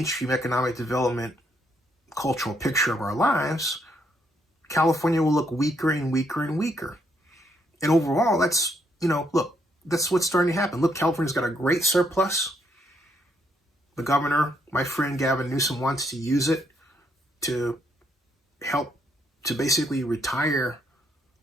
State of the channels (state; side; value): normal; both; correlation 0.73